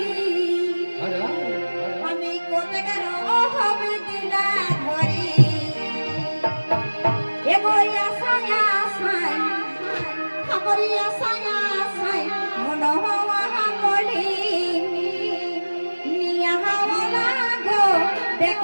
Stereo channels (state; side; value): inverted; both; correlation -1.00